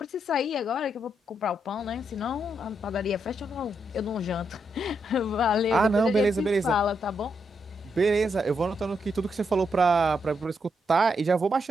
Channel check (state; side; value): normal; both; correlation 0.80